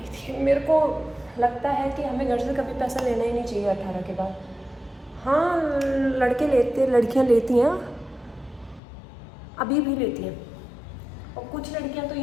थी। मेरे को लगता है कि हमें घर से कभी पैसा लेना ही नहीं चाहिए 18 के बाद। हाँ, लड़कियाँ लेती हैं, अभी भी लेती हैं। और कुछ लड़कियां तो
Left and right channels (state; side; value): drops out; right; at 8.8 s